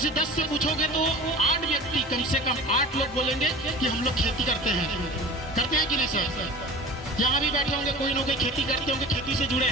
10 से पूछोगे तो 8 व्यक्ति, कम से कम 8 लोग बोलेंगे कि हम लोग खेती करते हैं कि नहीं सर? यहाँ भी बैठे होंगे कोई ना कोई खेती करते होंगे, खेती से जुड़े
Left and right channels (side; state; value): both; normal; correlation 0.38